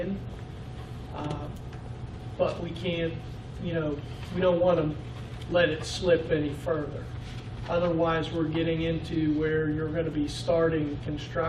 but we can't, we don't want to let it slip any further. Otherwise, we're getting into where you're going to be starting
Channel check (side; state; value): both; identical; correlation 1.00